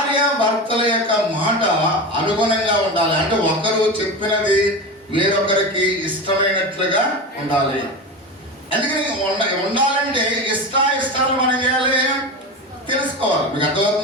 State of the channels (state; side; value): normal; both; correlation 0.24